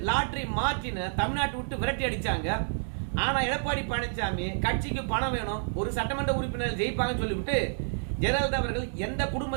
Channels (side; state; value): left; silent; digital silence